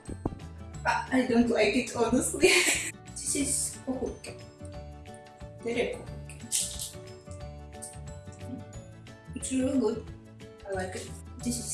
I don't like it honestly. This is kohuke. It's really good. I like it. This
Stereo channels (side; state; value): both; identical; correlation 1.00